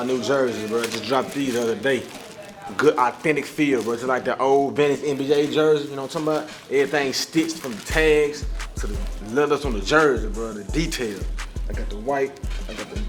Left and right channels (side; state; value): both; identical; correlation 1.00